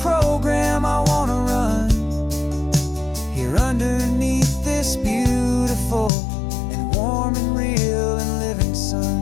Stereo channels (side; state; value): right; drops out; at 6.1 s